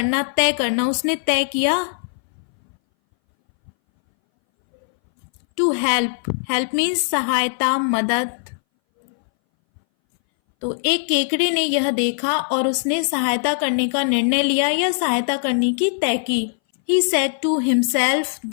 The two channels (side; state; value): right; silent; 61 dB below the other